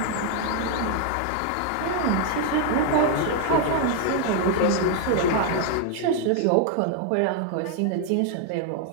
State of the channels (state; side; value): different; both; correlation 0.00